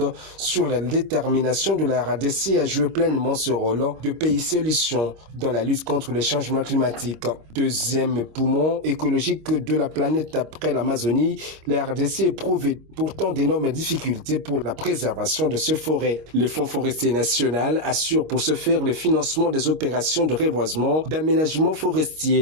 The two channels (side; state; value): left; late; 26 ms